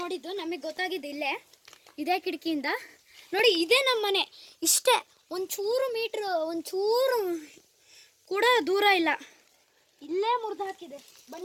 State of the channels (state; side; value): identical; both; correlation 1.00